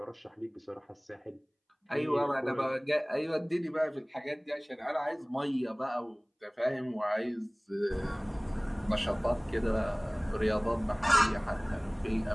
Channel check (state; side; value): identical; both; correlation 1.00